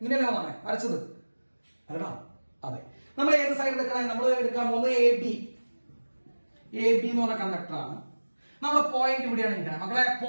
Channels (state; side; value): inverted; both; correlation -1.00